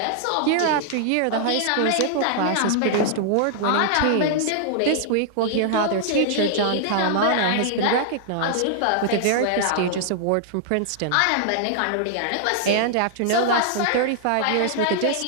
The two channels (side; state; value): both; different; correlation -0.01